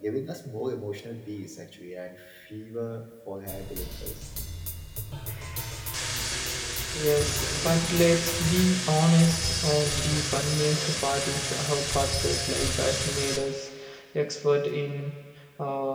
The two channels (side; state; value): both; identical; correlation 1.00